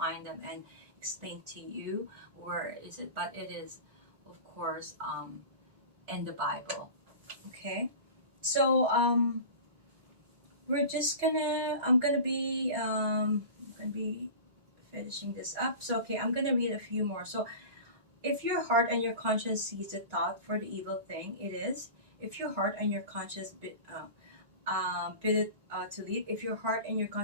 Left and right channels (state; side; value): inverted; both; correlation -0.34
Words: them and explain to you where is it, but it is, of course, in the Bible. Okay, so we're just gonna. I'm gonna be finishing this up. So okay, I'm gonna read a few more. So if your heart and your conscience sees the thought for the evil thing it is, if your heart and your conscience bid it to leave, if your heart and your